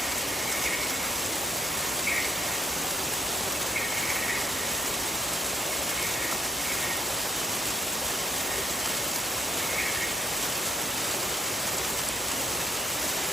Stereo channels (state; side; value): normal; both; correlation 0.66